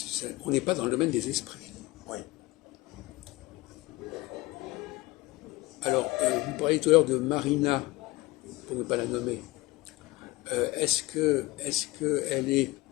on n'est pas dans le domaine des esprits. Oui. Alors, vous parliez tout à l'heure de Marina, pour ne pas la nommer. Est-ce qu'elle est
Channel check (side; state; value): right; quieter; 20.1 dB